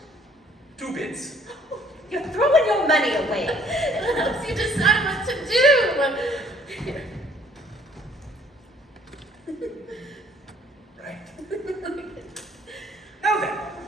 2 bits. You're throwing your money away. It helps you decide what to do. Here. Right. Now then,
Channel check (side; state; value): both; normal; correlation 0.60